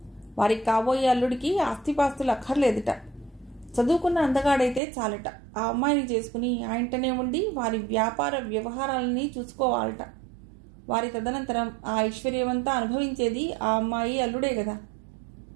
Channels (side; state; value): left; drops out; at 4.8 s